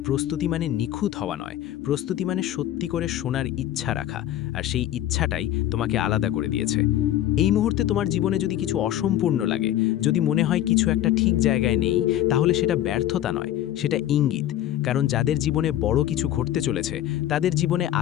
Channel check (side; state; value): right; quieter; 12.6 dB